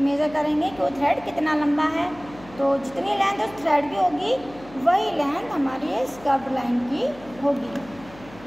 मेज़र करेंगे कि वो थ्रेड कितना लंबा है। तो जितनी लेंथ उस थ्रेड की होगी वही लेंथ हमारी इस कर्व्ड लाइन की होगी।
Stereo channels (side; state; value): left; noise; hum, 20 dB below the sound